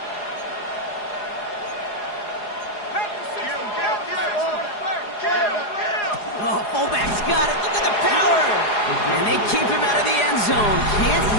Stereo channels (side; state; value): right; late; 4.8 ms